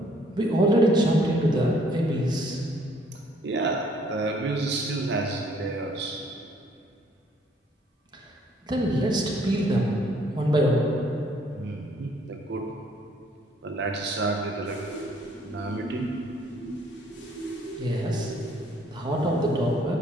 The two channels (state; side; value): normal; both; correlation 0.63